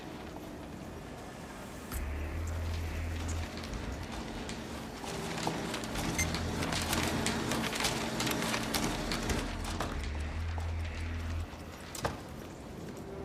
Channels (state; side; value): identical; both; correlation 1.00